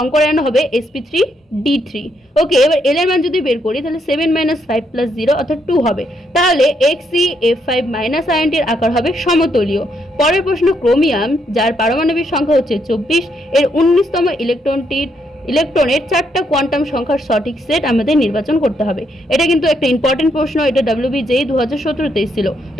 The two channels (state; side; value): normal; both; correlation 0.76